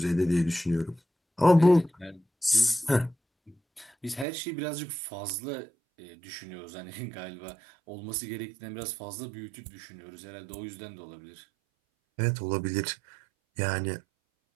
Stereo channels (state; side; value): drops out; left; at 4.2 s